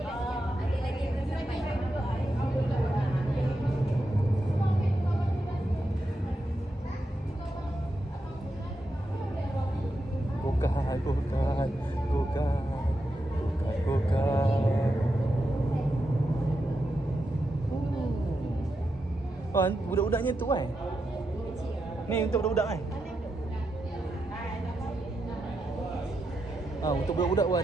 Oh, budak-budaknya tu kan? Ni untuk budak-budak kan? Untuk budak-budak pun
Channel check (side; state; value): both; normal; correlation 0.86